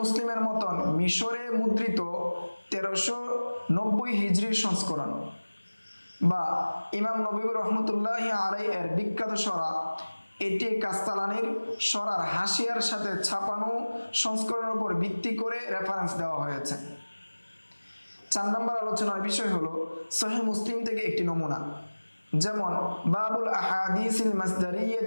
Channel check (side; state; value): both; inverted; correlation -1.00